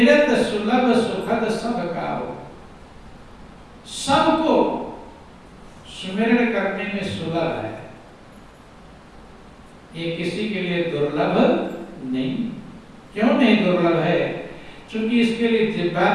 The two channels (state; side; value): identical; both; correlation 1.00